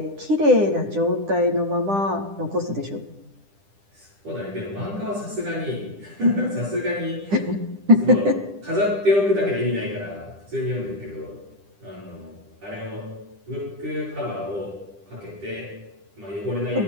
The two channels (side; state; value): left; late; 10 ms